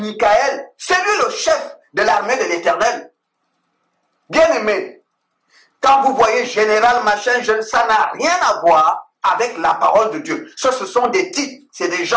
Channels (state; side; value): identical; both; correlation 1.00